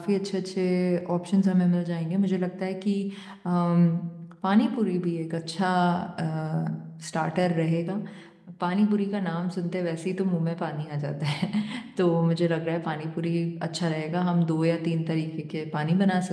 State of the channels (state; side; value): identical; both; correlation 1.00